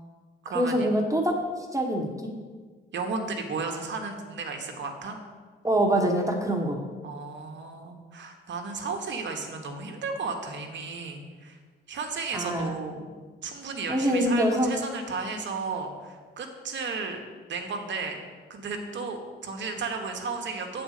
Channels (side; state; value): both; normal; correlation 0.44